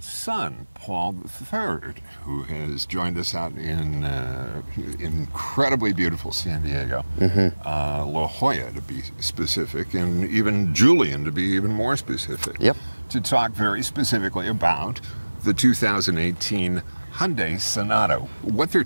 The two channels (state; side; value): inverted; both; correlation -1.00